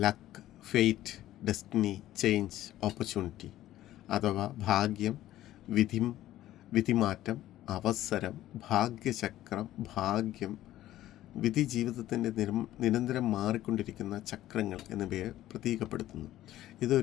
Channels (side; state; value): right; quieter; 14.1 dB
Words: luck, fate, destiny, change, opportunity അഥവാ ഭാഗ്യം, വിധിമാറ്റം, അവസരം, ഭാഗ്യചക്രം, ഭാഗ്യം, വിധി, ജീവിതത്തിൻ്റെ നിരന്തരം മാറിക്കൊണ്ടിരിക്കുന്ന ചക്രങ്ങൾ എന്നിവയെ പ്രതീകപ്പെടുത്തുന്നു.